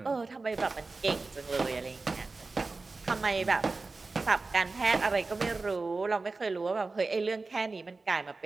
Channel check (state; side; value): quieter; left; 3.7 dB